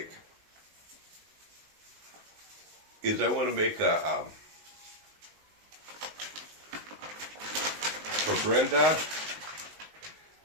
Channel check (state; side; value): late; left; 19 ms